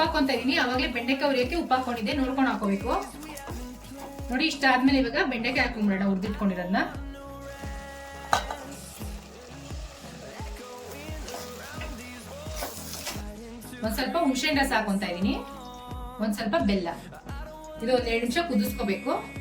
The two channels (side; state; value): both; identical; correlation 1.00